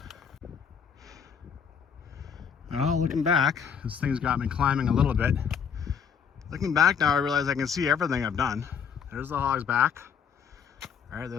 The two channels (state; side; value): quieter; right; 7.1 dB